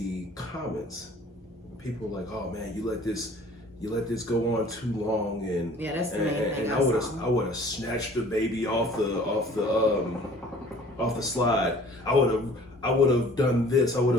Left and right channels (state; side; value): normal; both; correlation 0.50